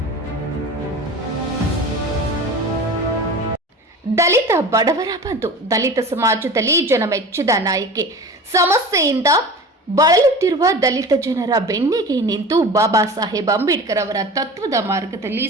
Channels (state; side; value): normal; both; correlation 0.35